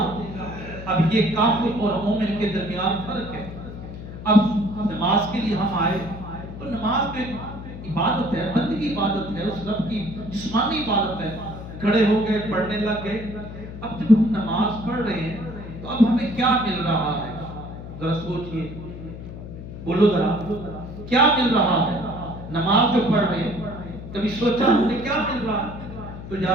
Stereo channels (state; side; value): noise; left; hum, 11 dB below the sound